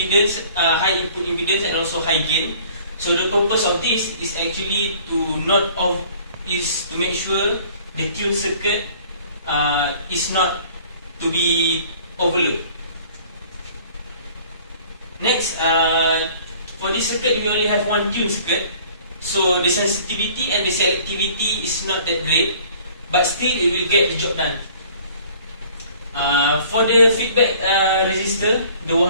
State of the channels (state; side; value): inverted; both; correlation -0.52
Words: high input impedance, and also high gain. So the purpose of this is actually to make sure the tune circuit is not to be overlooked. Next, for this circuit, we only have one tune circuit, so the sensitivity and the selectivity is not that great, but still it will get the job done. For the feedback resistor, the